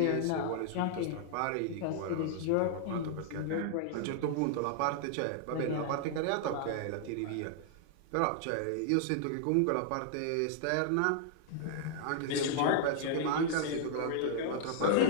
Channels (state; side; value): different; both; correlation -0.01